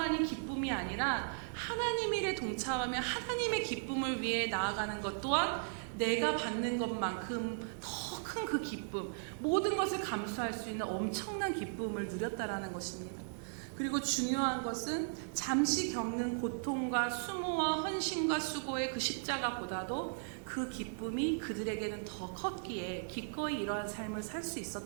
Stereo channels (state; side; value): silent; left; digital silence